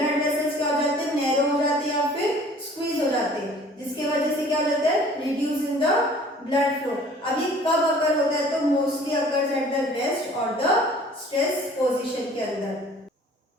वेसल्स क्या हो जाते हैं, नैरो हो जाते हैं या फिर स्क्वीज हो जाते हैं, जिसकी वजह से क्या हो जाता है, reduce in the blood flow. अब ये कब अकर होता है, तो mostly occurs at the rest और द स्ट्रेस पोजीशन के अंदर।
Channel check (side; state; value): both; normal; correlation 0.51